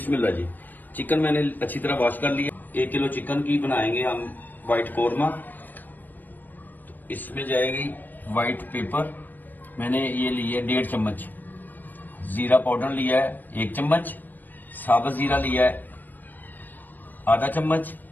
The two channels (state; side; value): late; right; 0.088 ms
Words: जी। चिकन मैंने अच्छी तरह वॉश कर लिया। 1 किलो चिकन की बनाएंगे हम व्हाइट कौरमा। तो इसमें जाएगी व्हाइट पेपर, मैंने ये लिया है 1.5 चम्मच। जीरा पाउडर लिया है 1 चम्मच। साबुत जीरा लिया है आधा चम्मच।